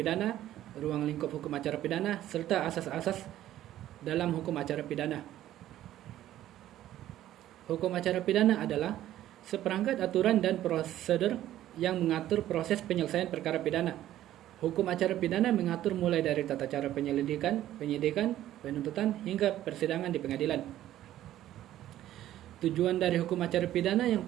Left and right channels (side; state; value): left; quieter; 13.1 dB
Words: ruang lingkup hukum acara pidana, serta asas-asas dalam hukum acara pidana. Hukum acara pidana adalah seperangkat aturan dan prosedur yang mengatur proses penyelesaian perkara pidana. Hukum acara pidana mengatur mulai dari tata cara penyelidikan, penyidikan, penuntutan, hingga persidangan di pengadilan. Tujuan dari hukum acara pidana yang